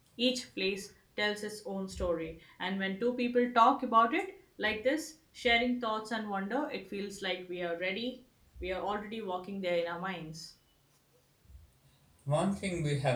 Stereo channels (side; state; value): both; identical; correlation 1.00